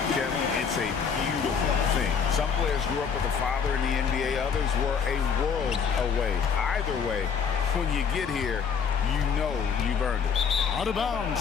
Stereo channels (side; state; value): right; quieter; 6.5 dB